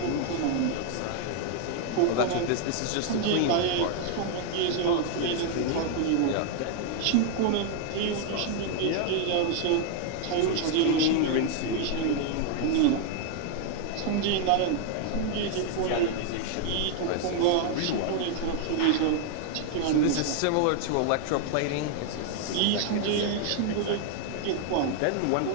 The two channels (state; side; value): different; both; correlation 0.00